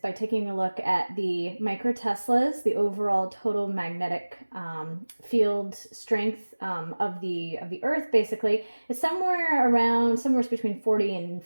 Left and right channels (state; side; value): inverted; both; correlation -1.00